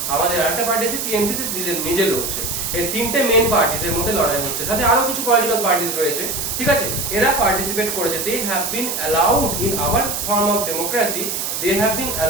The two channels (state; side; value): noise; right; hiss, 3 dB below the sound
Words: আমাদের আরেকটা পার্টি আছে টিএমসি, সে নিজে লড়ছে। এই তিনটে মেইন পার্টিস এর মধ্যে লড়াই হচ্ছে, সাথে আরো কিছু পলিটিক্যাল পার্টিস রয়েছে, ঠিক আছে? এরা পার্টিসিপেট করেছে। They have been allowed in our form of democracy, they have been